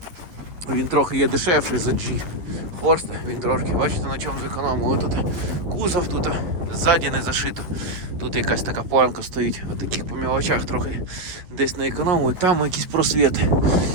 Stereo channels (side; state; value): left; late; 11 ms